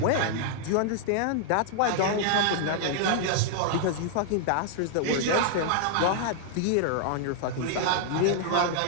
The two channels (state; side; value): different; both; correlation -0.01